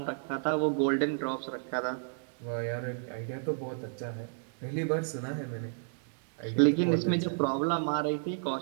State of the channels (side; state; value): left; silent; 57 dB below the other